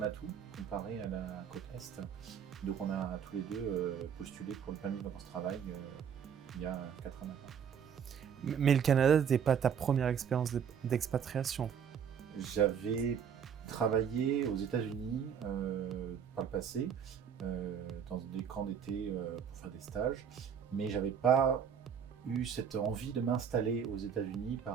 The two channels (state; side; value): quieter; left; 7.7 dB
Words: atout comparé à la côte Est. Donc on a tous les deux postulé pour le permis de vacances-travail il y a 4 ans maintenant. Mais le Canada n'était pas ta première expérience d'expatriation. J'avais travaillé aux États-Unis par le passé, dans des camps d'été pour faire des stages, mais j'avais pas eu cette envie de m'installer aux États-Unis